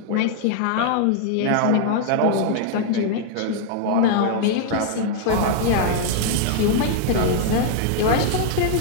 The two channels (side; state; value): both; different; correlation 0.00